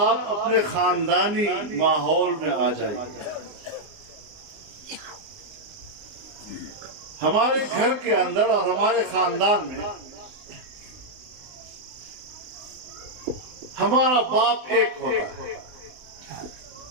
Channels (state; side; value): late; left; 19 ms